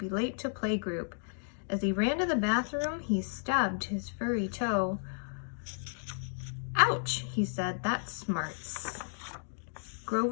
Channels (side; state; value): right; silent; digital silence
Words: late to playgroup." As he ran to the bathroom, he stubbed his furry toe. "Ouch," he said, "that smarts."